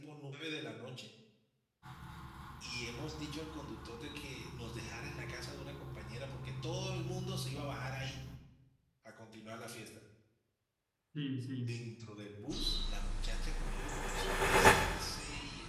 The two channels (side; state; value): both; identical; correlation 1.00